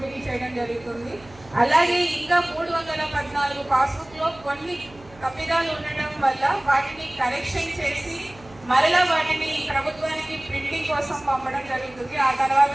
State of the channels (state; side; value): noise; right; hum, 24 dB below the sound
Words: చేయడం జరుగుతుంది. అలాగే ఇంకా 314 పాస్బుక్లో కొన్ని తప్పిదాలు ఉండడం వల్ల వాటిని కరెక్షన్ చేసి మరలా వాటిని ప్రభుత్వానికి ప్రింటింగ్ కోసం పంపడం జరుగుతుంది. ఆ తర్వాత